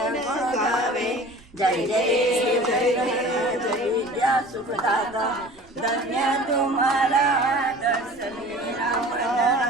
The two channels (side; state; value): right; noise; rumble, 26 dB below the sound